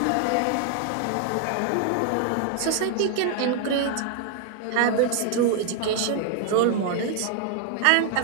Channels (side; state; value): both; different; correlation 0.00